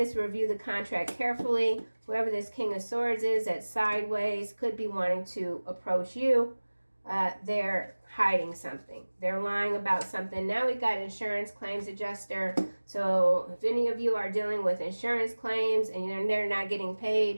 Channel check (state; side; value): inverted; both; correlation -1.00